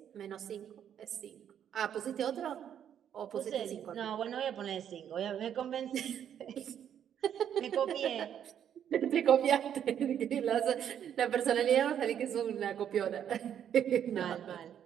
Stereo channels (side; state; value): left; quieter; 9.3 dB